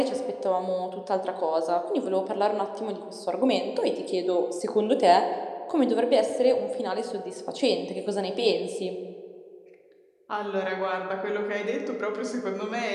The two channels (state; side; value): identical; both; correlation 1.00